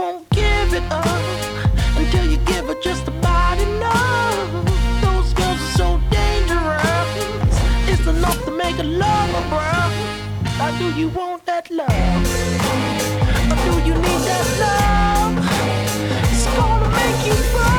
give it up until you give her just about enough. Those girls are so dangerous. It's enough to make a lover, bro. Now do you want that that love.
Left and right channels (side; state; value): both; identical; correlation 1.00